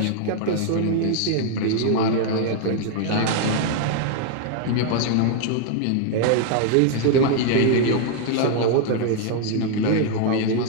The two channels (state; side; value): different; both; correlation 0.00